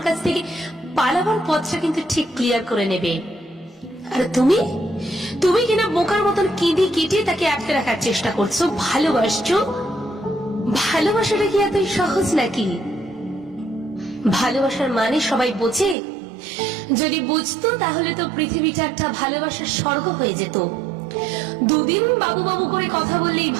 কাছ থেকে পালাবার পথটা কিন্তু ঠিক ক্লিয়ার করে নেবে। আর তুমি তুমি কিনা বোকার মতন কেঁদে কেটে তাকে আটকে রাখার চেষ্টা করছো। ভালোবাসছো? ভালোবাসাটা কি এতই সহজ নাকি? ভালোবাসার মানে সবাই বোঝে? যদি বুঝতো তাহলে তো পৃথিবীটা একটা ভালোবাসার স্বর্গ হয়ে যেত। দুদিন বাবু বাবু করে কথা বললেই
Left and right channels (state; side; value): drops out; left; at 16.0 s